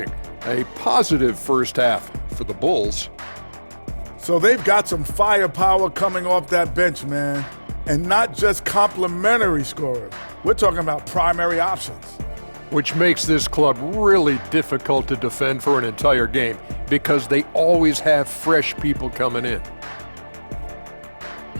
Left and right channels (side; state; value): both; inverted; correlation -1.00